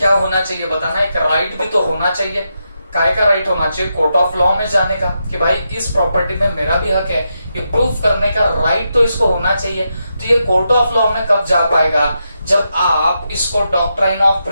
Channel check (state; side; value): inverted; both; correlation -0.85